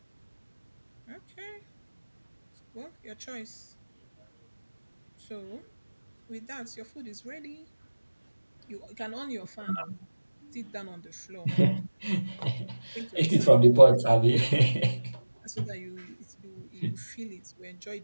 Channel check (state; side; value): inverted; both; correlation -1.00